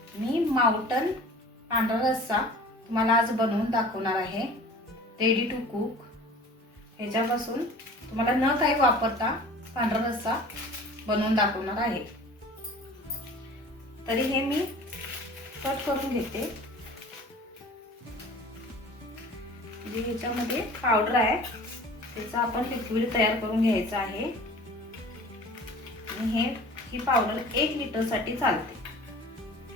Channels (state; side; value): normal; both; correlation 0.44